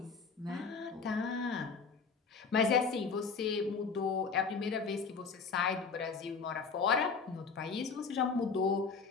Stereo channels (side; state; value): right; quieter; 5.1 dB